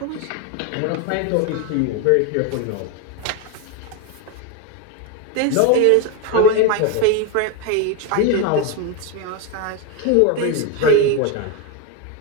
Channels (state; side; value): different; both; correlation 0.02